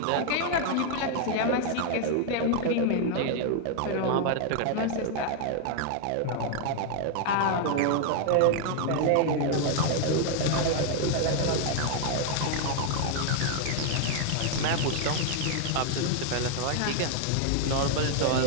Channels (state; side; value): different; both; correlation 0.00